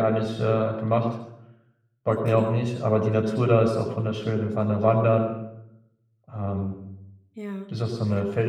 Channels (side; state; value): both; identical; correlation 1.00